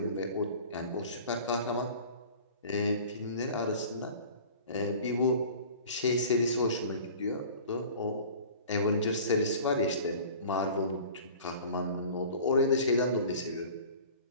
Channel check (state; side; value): inverted; both; correlation -0.43